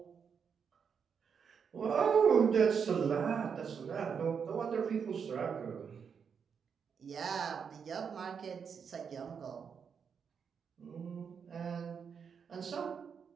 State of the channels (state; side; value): quieter; left; 6.7 dB